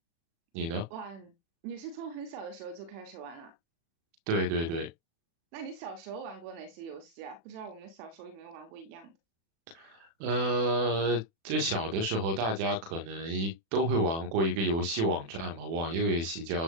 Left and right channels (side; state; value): left; late; 36 ms